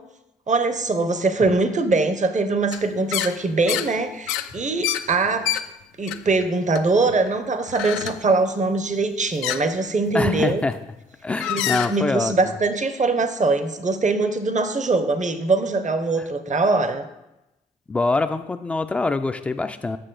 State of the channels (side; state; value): both; normal; correlation 0.57